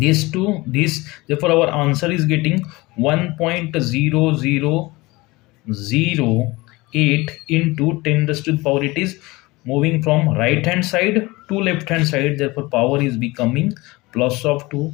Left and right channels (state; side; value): quieter; right; 22.0 dB